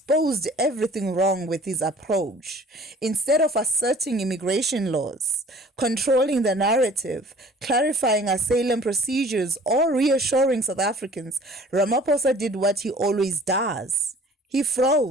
everything wrong with his approach. Instead of asserting immigration laws, controlling the narrative, clarifying asylum procedures, or reassuring South Africans, Ramaphosa did what he always does. He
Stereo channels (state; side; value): normal; both; correlation 0.49